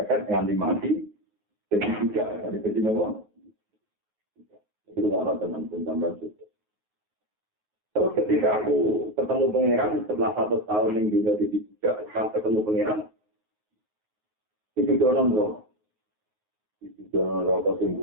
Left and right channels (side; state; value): both; normal; correlation 0.14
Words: nanti mati jadi juga jadi nomor itu orang teman-teman tambah juga. Terus ketika aku ketemu pangeran setelah 1 tahun yang juga di tidak ketemu pangeran, didonon loh. Didonon rokok sing